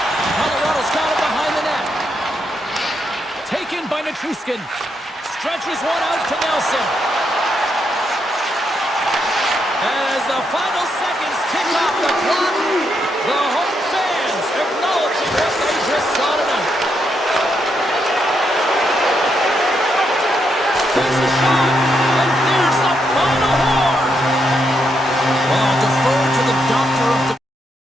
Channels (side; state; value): both; normal; correlation 0.80